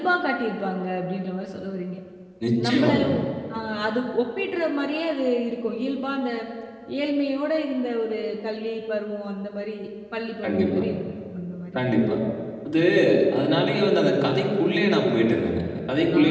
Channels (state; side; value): identical; both; correlation 1.00